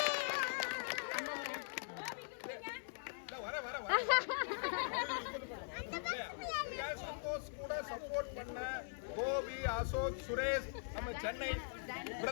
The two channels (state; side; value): silent; right; digital silence